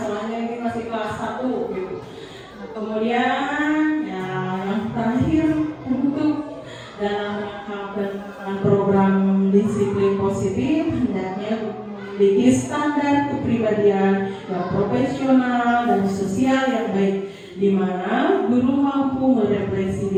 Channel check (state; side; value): identical; both; correlation 1.00